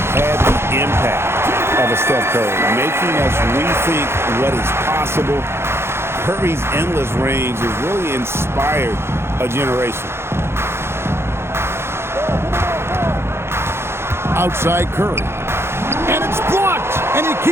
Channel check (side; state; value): left; late; 0.12 ms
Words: had the impact of a Steph Curry, making us rethink what is possible. Curry's endless range has really inspired a generation. Outside Curry. And it's blocked, and he